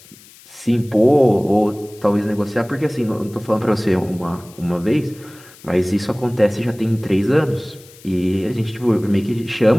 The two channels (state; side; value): noise; left; hiss, 23 dB below the sound